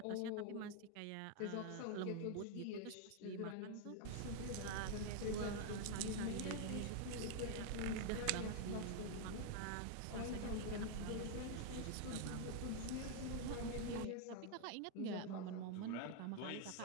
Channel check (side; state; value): both; different; correlation 0.00